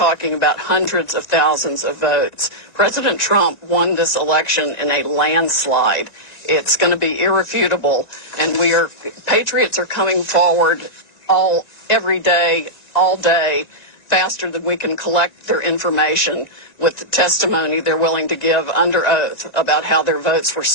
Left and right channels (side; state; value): right; late; 1.9 ms